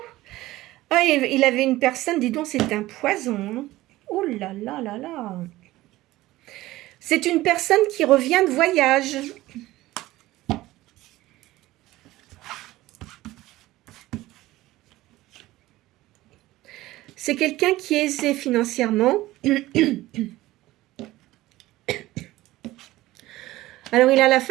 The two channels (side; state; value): left; quieter; 17.2 dB